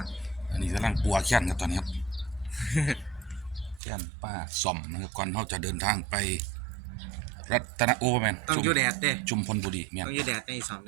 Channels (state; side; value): drops out; left; at 3.8 s